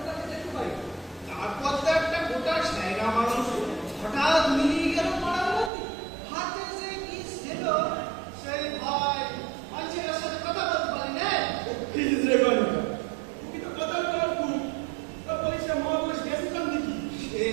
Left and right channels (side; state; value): left; drops out; at 5.7 s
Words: তাকে দেখতে পাই। তারপর তো একটা গোটা সাইরা মানুষ হঠাৎ মিলিয়ে গেল পাড়ার মধ্যে। হাতে যে কি ছিল সেই ভয় মানুষের সাথে কথা বলতে পারি না।